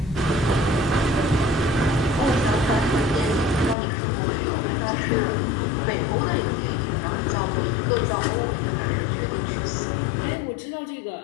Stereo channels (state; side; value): drops out; right; at 3.8 s